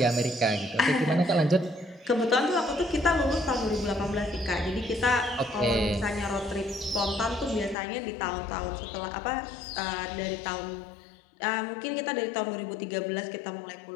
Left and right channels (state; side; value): drops out; right; at 7.8 s